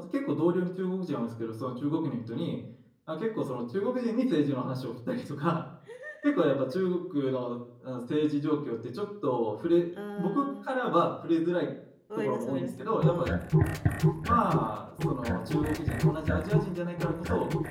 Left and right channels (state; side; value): identical; both; correlation 1.00